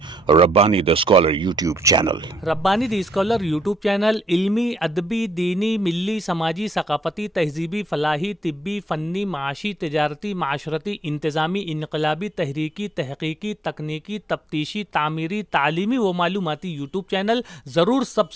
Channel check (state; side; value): normal; both; correlation 0.75